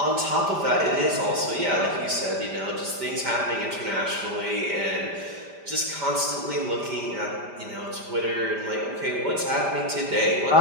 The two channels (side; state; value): left; late; 5.1 ms